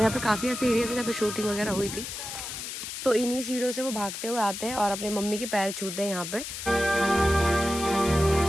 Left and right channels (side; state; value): left; noise; hiss, 7 dB below the sound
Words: पे काफ़ी ऐसे एरिया थे जहाँ पे शूटिंग वगैरह हुई थी। तो इन्हीं सीढ़ियों से वो भागते हुए आते हैं और अपने मम्मी के पैर छूते हैं यहाँ पे।